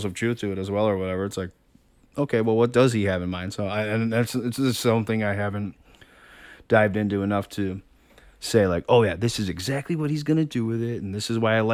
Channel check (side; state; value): both; identical; correlation 1.00